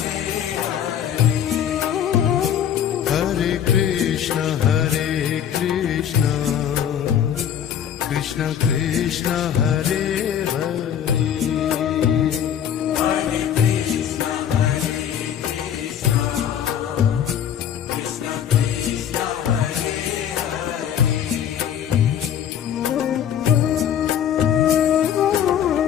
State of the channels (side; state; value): right; quieter; 9.3 dB